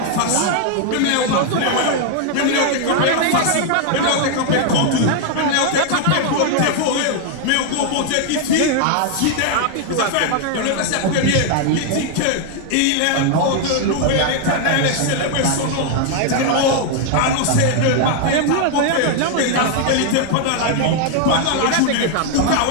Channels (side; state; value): both; different; correlation 0.00